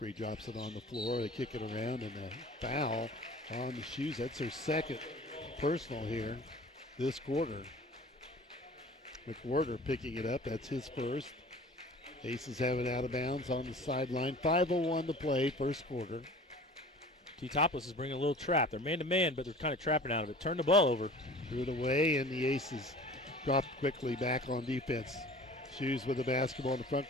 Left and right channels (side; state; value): both; normal; correlation 0.44